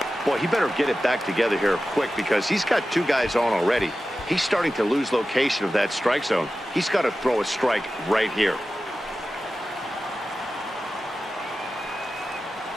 Boy, he better get it back together here quick because he's got 2 guys on already. He's starting to lose location of that strike zone. He's got to throw a strike right here.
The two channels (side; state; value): right; noise; rumble, 29 dB below the sound